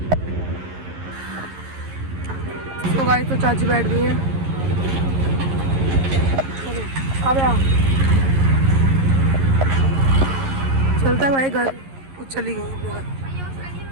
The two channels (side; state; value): left; late; 11 ms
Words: तो गाइस तो चाची बैठ गई है। अब आ चलता है भाई घर। कुछ चली गई अपने घर।